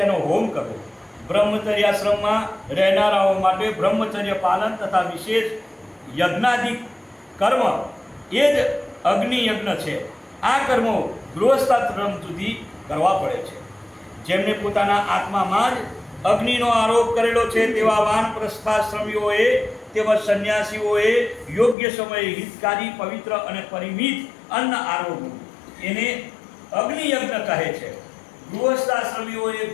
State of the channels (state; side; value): drops out; right; at 21.8 s